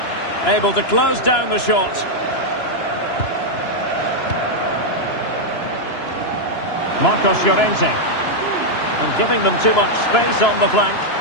Able to close down the shot. Marcos Llorente. And giving them too much space on the flank.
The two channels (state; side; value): late; right; 2.9 ms